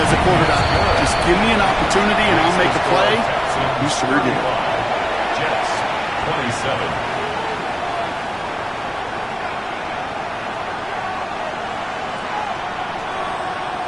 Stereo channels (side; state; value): both; identical; correlation 1.00